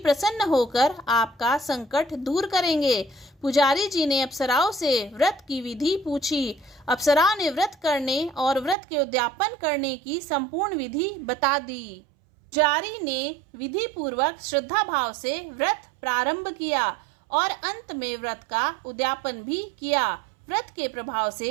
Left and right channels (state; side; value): drops out; left; at 8.8 s